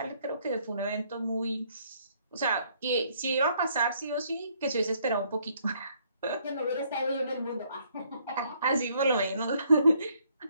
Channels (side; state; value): both; inverted; correlation -0.67